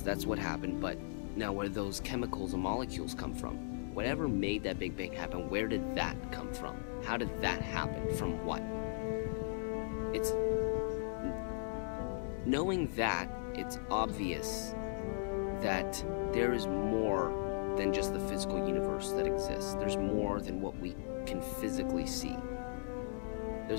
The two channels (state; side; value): silent; right; digital silence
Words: that's what happened, but now where those chemicals and molecules come from? Whatever made that Big Bang happen, where did that come from? How did that happen? From what? It's knowing that, it's obvious that there is more than just the physical universe that exists. There's more than what we can physically see.